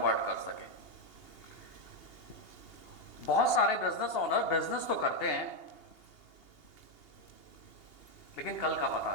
कर सकें। बहुत सारे बिजनेस ओनर बिजनेस तो करते हैं, लेकिन कल का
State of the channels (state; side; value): late; right; 2.8 ms